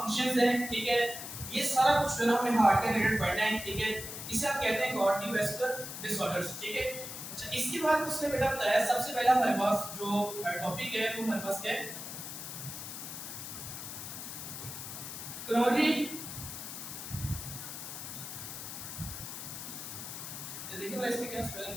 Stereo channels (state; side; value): noise; left; hiss, 8 dB below the sound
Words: है, ठीक है, ये सारा कुछ जो है हमें हार्ट के रिलेटेड पढ़ना है, ठीक है। इसे आप कहते हैं कार्डियोवैस्कुलर डिसऑर्डर्स, ठीक है। अच्छा, इसके बाद उसने बेटा बताया सबसे पहला हमारे पास जो टॉपिक है वो हमारे पास क्या है, कोरोनरी, देखिए मैं इसके क्या स्पेलिंग